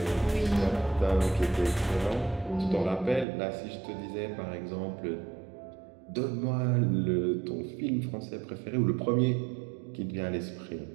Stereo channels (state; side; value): drops out; left; at 3.2 s